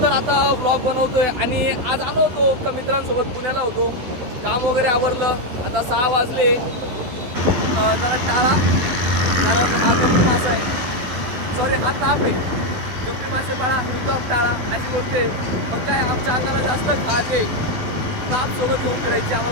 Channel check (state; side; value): late; left; 12 ms